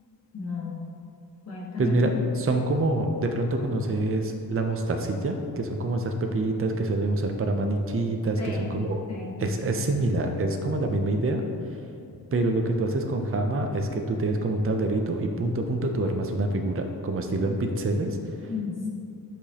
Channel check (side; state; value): both; normal; correlation 0.51